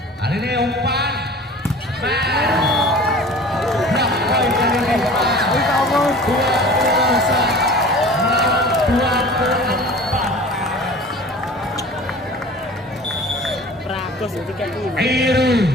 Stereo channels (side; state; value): both; normal; correlation 0.42